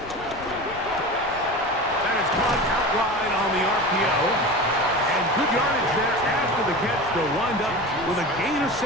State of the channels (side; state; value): left; noise; rumble, 18 dB below the sound